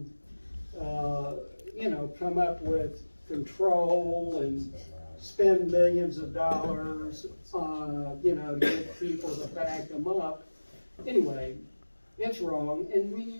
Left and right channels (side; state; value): both; inverted; correlation -1.00